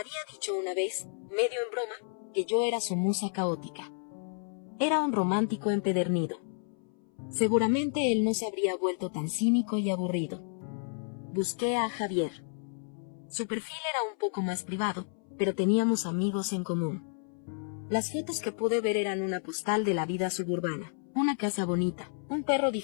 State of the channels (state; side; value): silent; right; 57 dB below the other